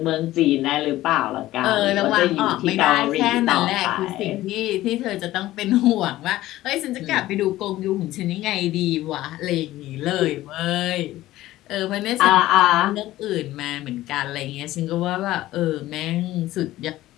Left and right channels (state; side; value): quieter; right; 15.8 dB